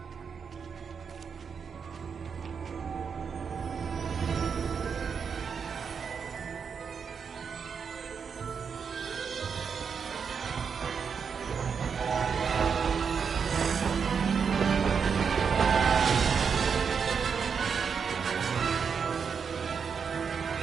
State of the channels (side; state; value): left; quieter; 6.3 dB